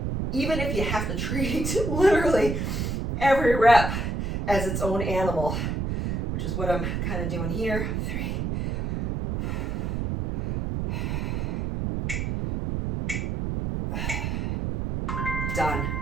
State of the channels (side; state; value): right; noise; rumble, 1 dB below the sound